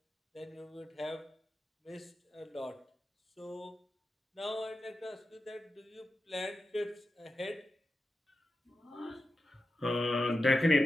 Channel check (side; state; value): both; normal; correlation 0.91